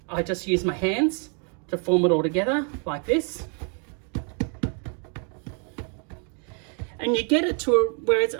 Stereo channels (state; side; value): quieter; left; 39.5 dB